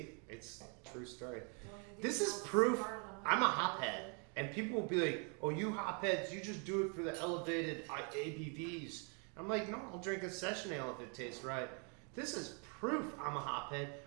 it's a true story. This is proof I'm a hophead. And people will be like, oh, you hopheads, you just do it for the elevated ABVs. I'm like, no, I'll drink a session ale if it tastes right. This is proof I'm a hophead.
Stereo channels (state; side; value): quieter; left; 37.8 dB